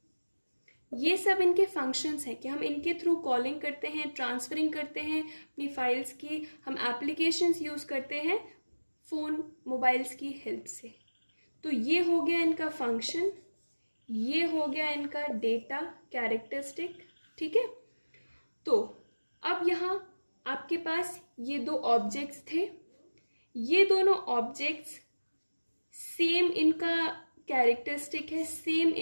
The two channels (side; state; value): both; inverted; correlation -1.00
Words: ये सब इनके फंक्शंस हैं कि हम इनके थ्रू कॉलिंग करते हैं, ट्रांसफरिंग करते हैं अपनी फाइल्स की, हम एप्लीकेशंस यूज़ करते हैं फ़ोन मोबाइल्स की हेल्प से. तो ये हो गया इनका फंक्शन, ये हो गया इनका डेटा कैरेक्टरिस्टिक. ठीक है, तो अब यहाँ आपके पास ये दो ऑब्जेक्ट्स थे. ये दोनों ऑब्जेक्ट्स सेम इनका कैरेक्टरिस्टिक है, सेम